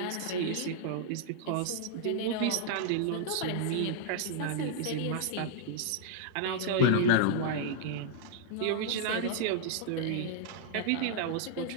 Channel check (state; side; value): different; both; correlation -0.01